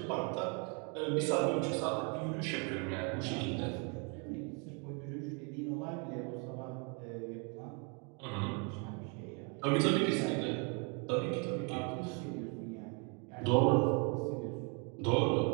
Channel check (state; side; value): quieter; left; 35.5 dB